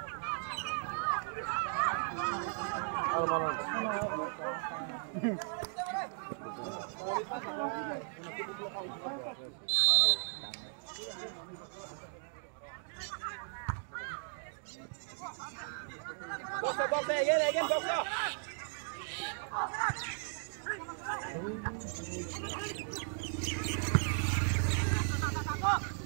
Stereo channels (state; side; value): silent; left; 53 dB below the other